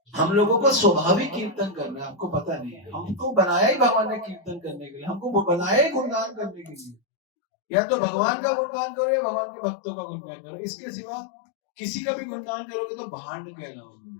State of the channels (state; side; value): drops out; right; at 7.0 s